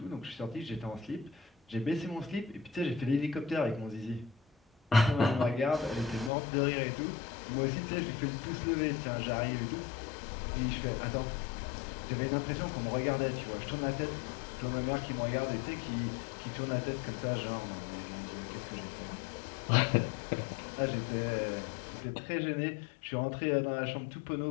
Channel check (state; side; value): drops out; right; at 6.3 s